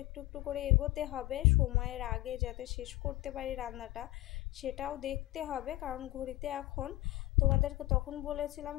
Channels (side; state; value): right; quieter; 18.1 dB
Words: একটু একটু করে এগোতে হবে, সময়ের আগে যাতে শেষ করতে পারি রান্নাটা সেটাও দেখতে হবে। কারণ ঘড়িতে এখন, তোমাদেরকে তখন বলেছিলাম